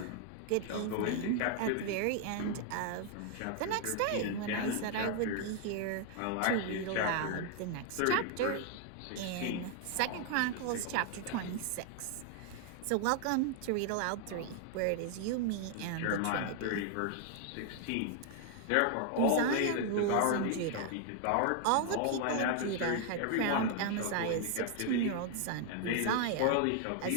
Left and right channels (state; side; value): different; both; correlation 0.00